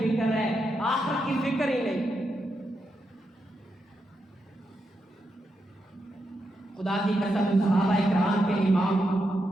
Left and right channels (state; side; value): normal; both; correlation 0.84